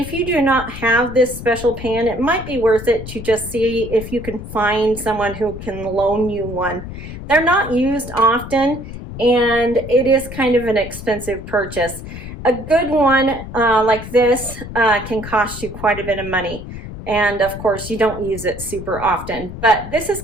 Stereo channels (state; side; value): noise; left; rumble, 11 dB below the sound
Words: you do not have this special pan, it might be worth it to just see if you can find someone who can loan you one. They're not used often, and it is kind of an expensive purchase. A good one like this can cost you quite a bit of money, and of course you don't use it super often. But this is